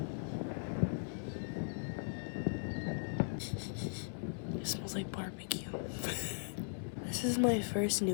It smells like barbecue. This is my first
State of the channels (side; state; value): right; silent; 52 dB below the other